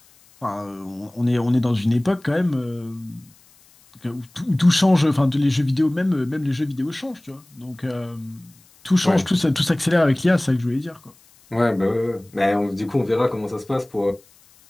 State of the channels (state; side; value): noise; left; hiss, 29 dB below the sound